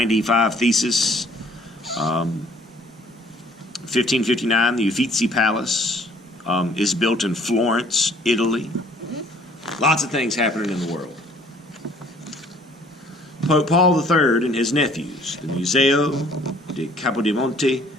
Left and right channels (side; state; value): both; normal; correlation 0.58